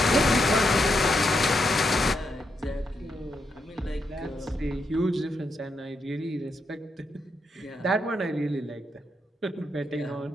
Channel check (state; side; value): normal; both; correlation 0.81